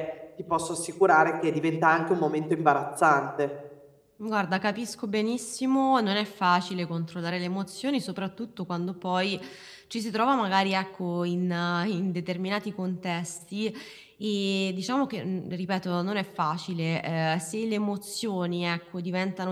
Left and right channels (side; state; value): both; identical; correlation 1.00